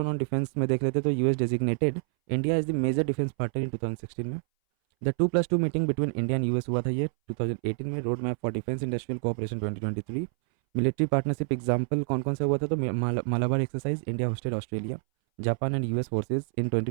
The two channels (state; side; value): silent; left; 59 dB below the other